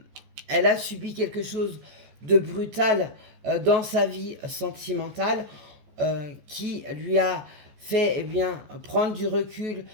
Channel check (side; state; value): left; late; 14 ms